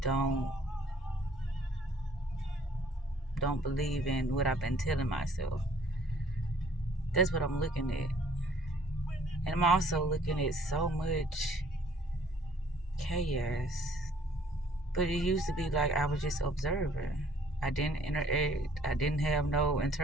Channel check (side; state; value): both; normal; correlation 0.59